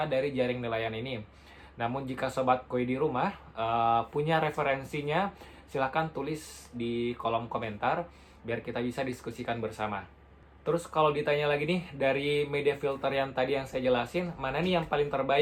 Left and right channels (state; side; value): identical; both; correlation 1.00